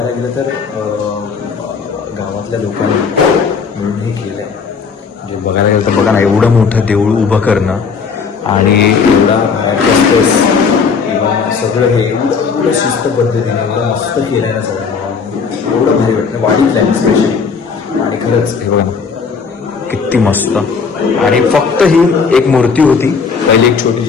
गेलं तर गावातल्या लोकांनी मिळून हे केलं आहे. म्हणजे बघायला गेलं तर बघा ना एवढं मोठं देऊळ उभं करणं आणि एवढा स्पेस किंवा सगळं हे एवढं शिस्त पद्धतीने एवढं मस्त केलं आहे ना सगळं एवढं भारी वाटतं. वाढीतलं आहे स्पेशली आणि खरंच हे बघा किती मस्त. आणि फक्त ही एक मूर्ती होती पहिली एक छोटी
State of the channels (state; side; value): quieter; right; 5.5 dB